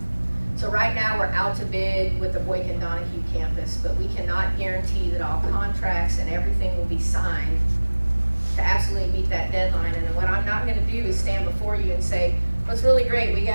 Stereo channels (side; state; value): both; inverted; correlation -1.00